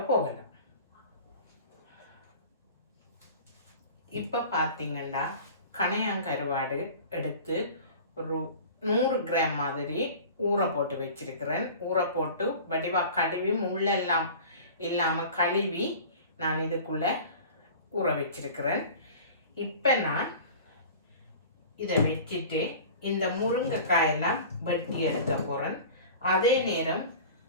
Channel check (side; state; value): both; inverted; correlation -0.40